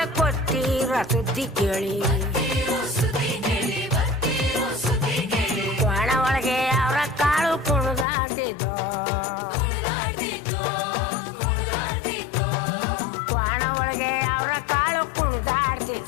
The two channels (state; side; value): drops out; right; at 8.1 s